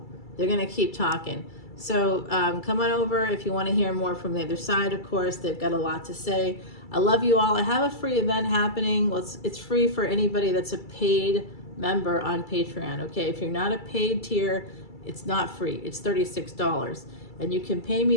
they're going to keep talking. So come on over if you want to hear more from the other side. Of course, they've got a lot to say. I love you all. I have a free event happening. Well, it's free for anybody that's a paid member on Patreon. Okay, if you're not a paid tier, it's not free. It's $36, and you can pay me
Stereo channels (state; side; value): late; right; 2.3 ms